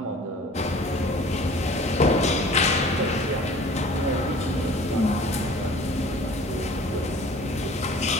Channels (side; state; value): both; normal; correlation 0.47